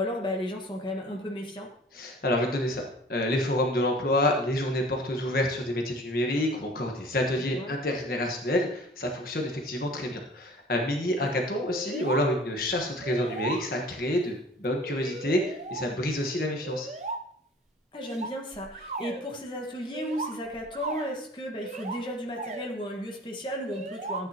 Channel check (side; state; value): both; normal; correlation 0.47